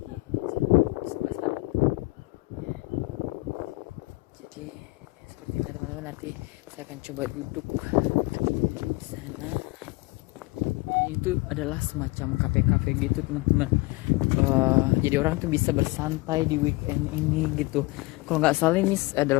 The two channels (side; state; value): right; quieter; 22.8 dB